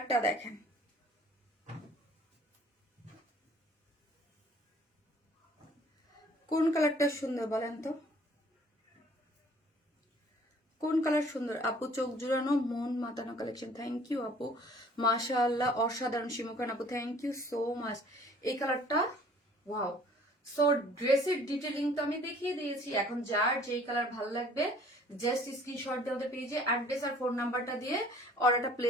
দেখেন, কোন কালারটা সুন্দর বলেন তো, কোন কালার সুন্দর আপু, চোখ জুড়ানো মন মাতানো কালেকশন। থ্যাংক ইউ আপু, মাশাআল্লাহ অসাধারণ। শিমুখান আপু থ্যাংক ইউ সো মাচ। এই কালারটা ওয়াও। সো ড্রেসের ডিটেলিং তো আমি দেখিয়ে দিয়েছি, এখন যার যেই কালার ভালো লাগবে জাস্ট স্ক্রিনশট দিয়ে ওদের পেজে অ্যাড্রেস আর ফোন নাম্বারটা দিয়ে অর্ডারটা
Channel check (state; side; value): normal; both; correlation 0.54